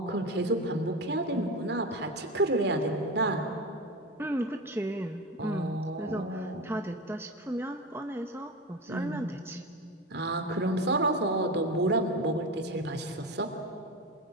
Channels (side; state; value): both; normal; correlation 0.24